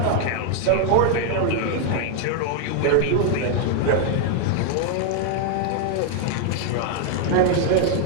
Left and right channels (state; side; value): different; both; correlation 0.00